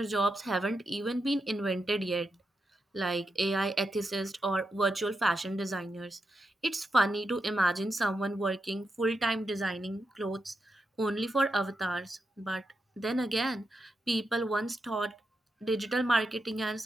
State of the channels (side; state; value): both; normal; correlation 0.86